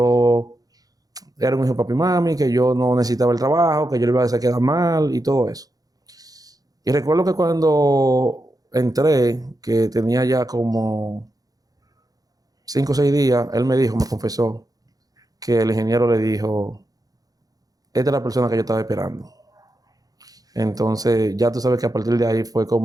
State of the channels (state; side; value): late; left; 0.18 ms